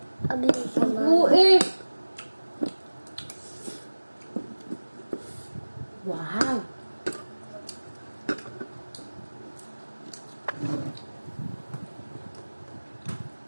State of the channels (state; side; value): inverted; both; correlation -1.00